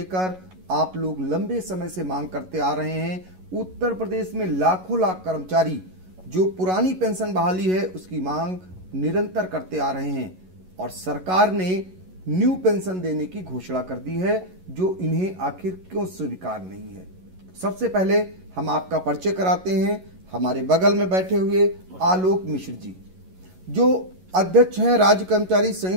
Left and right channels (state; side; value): late; left; 11 ms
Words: आप लोग लंबे समय से मांग करते आ रहे हैं। उत्तर प्रदेश में लाखों लाख कर्मचारी जो पुरानी पेंशन बहाली है उसकी मांग निरंतर करते आ रहे हैं और सरकार ने न्यू पेंशन देने की घोषणा कर दी है जो इन्हें आखिर क्यों स्वीकार नहीं है। सबसे पहले हम आपका परिचय कराते हैं। हमारे बगल में बैठे हुए आलोक मिश्र जी जो अध्यक्ष हैं राज्य कर्मचारी